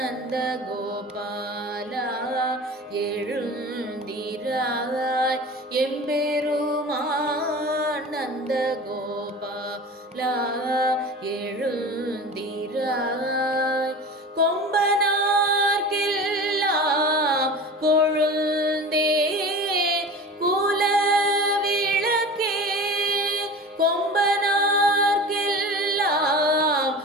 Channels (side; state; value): both; normal; correlation 0.35